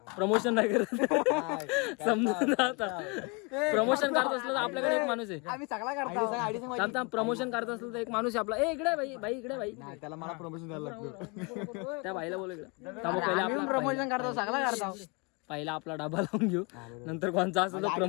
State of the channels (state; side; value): quieter; right; 30.2 dB